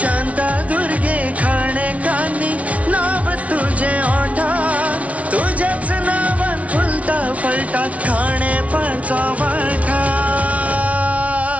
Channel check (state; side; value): late; left; 0.066 ms